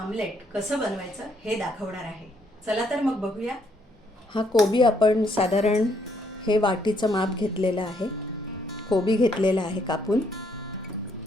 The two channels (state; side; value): normal; both; correlation 0.71